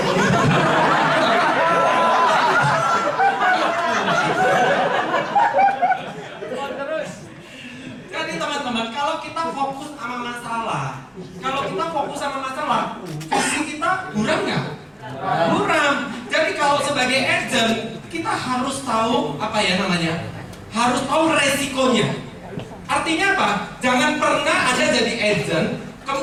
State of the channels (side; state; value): both; identical; correlation 1.00